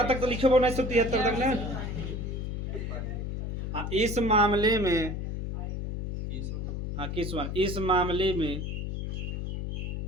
तक तो लिखो 1973 तक ना। हाँ इस मामले में हाँ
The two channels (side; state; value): left; noise; hum, 3 dB below the sound